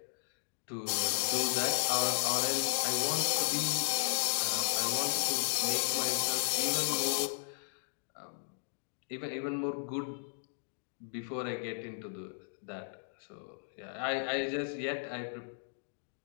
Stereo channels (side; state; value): right; silent; digital silence